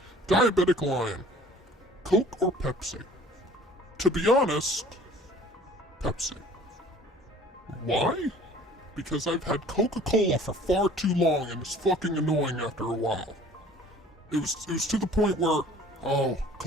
Diabetic Lion. Coke or Pepsi? To be honest, Pepsi. Why? Because I've had Coca-Cola for far too long and it's fucking annoying after a while. It was to the point where, oh,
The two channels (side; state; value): both; normal; correlation 0.50